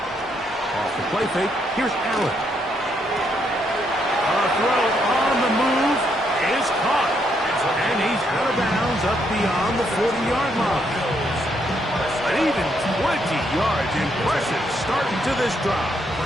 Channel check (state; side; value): normal; both; correlation 0.75